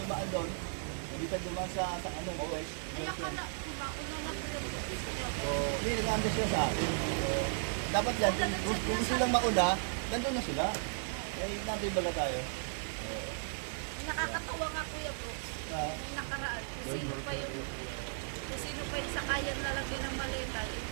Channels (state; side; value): silent; left; 54 dB below the other